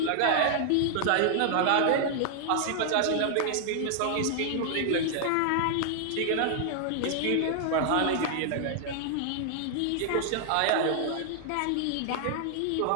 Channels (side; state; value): both; different; correlation 0.00